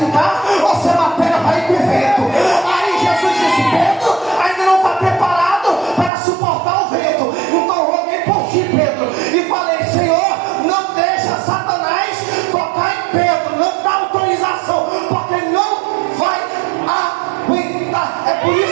ou se a matéria vai com o vento. Aí Jesus disse, Pedro, ainda não está preparado para suportar o vento, então roguei por ti, Pedro, e falei, Senhor, não deixa Satanás tocar em Pedro, não dá autorização, porque não vai aguentar. É por isso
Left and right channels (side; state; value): left; drops out; at 6.1 s